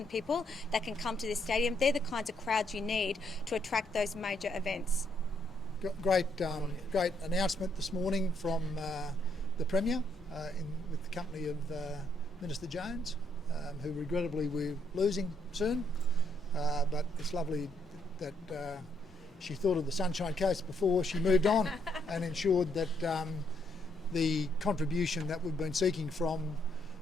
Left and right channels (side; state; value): both; normal; correlation 0.73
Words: people that can come to this stadium. They're the kinds of crowds you need to attract those major events. Great announcement this morning from the Premier with the company of Minister Jones, who regrettably we're losing soon. But it's lovely that she thought of the Sunshine Coast before she moved on and ensured that the contribution that we've been seeking from